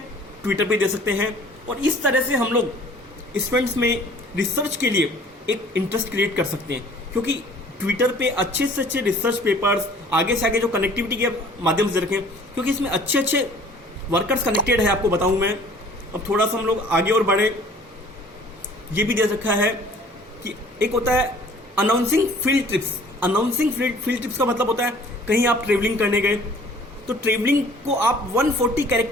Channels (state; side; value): normal; both; correlation 0.52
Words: ट्विटर पे दे सकते हैं। और इस तरह से हम लोग स्टूडेंट्स में रिसर्च के लिए एक इंटरेस्ट क्रिएट कर सकते हैं, क्योंकि ट्विटर पे अच्छे से अच्छे रिसर्च पेपर्स आगे से आगे जो कनेक्टिविटी के माध्यम से रखें, क्योंकि इसमें अच्छे अच्छे वर्कर्स कनेक्टेड है। आपको बताऊं मैं, अब थोड़ा सा हम लोग आगे और बढ़े, ये भी दे रखा है कि एक होता है announcing field trips. Announcing field trips का मतलब होता है कहीं आप ट्रेवलिंग करने गए, तो ट्रेवलिंग को आप 140